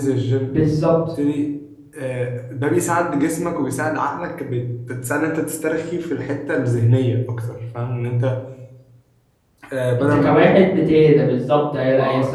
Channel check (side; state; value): both; identical; correlation 1.00